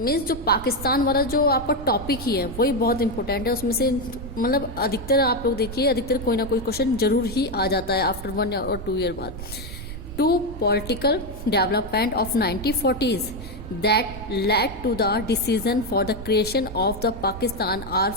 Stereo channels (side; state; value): right; noise; rumble, 11 dB below the sound